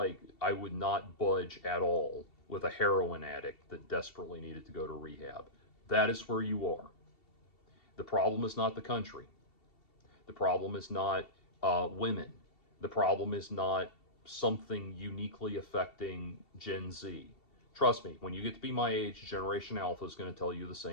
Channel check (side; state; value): right; late; 2.7 ms